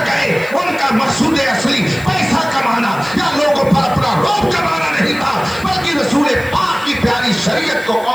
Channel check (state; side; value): noise; left; hiss, 21 dB below the sound